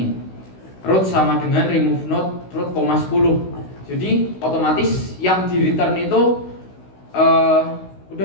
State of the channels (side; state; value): right; late; 16 ms